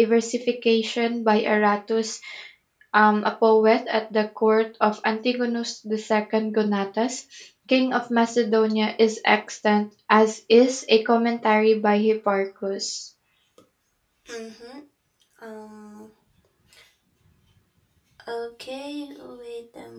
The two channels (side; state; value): both; identical; correlation 1.00